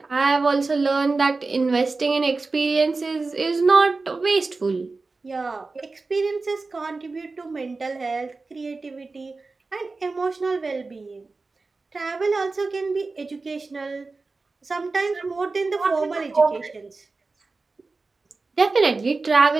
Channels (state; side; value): quieter; left; 3.8 dB